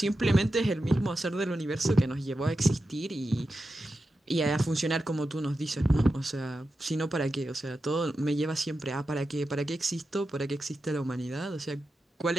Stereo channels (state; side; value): normal; both; correlation 0.90